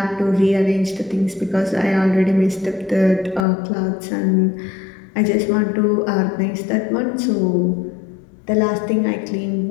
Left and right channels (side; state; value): right; drops out; at 3.5 s